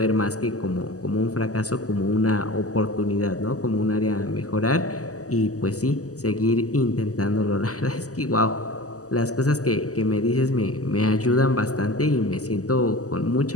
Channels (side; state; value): right; late; 0.66 ms